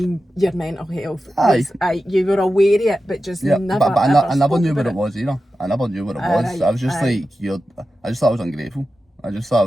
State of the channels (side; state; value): both; normal; correlation 0.92